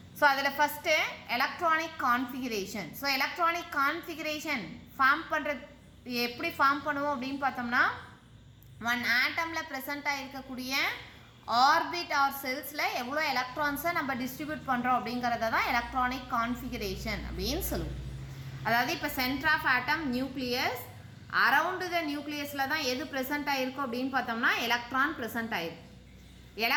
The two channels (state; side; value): identical; both; correlation 1.00